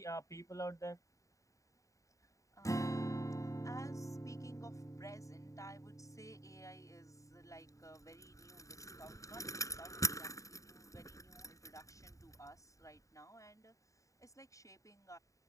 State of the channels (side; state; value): right; late; 0.16 ms